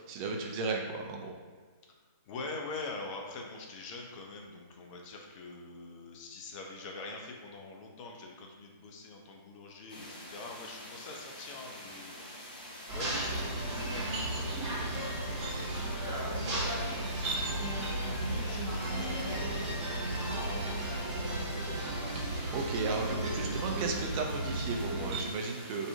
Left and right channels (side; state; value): both; inverted; correlation -0.43